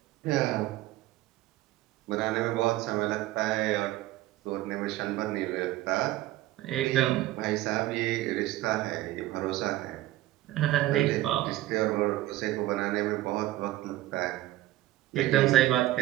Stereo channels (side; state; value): left; quieter; 15.9 dB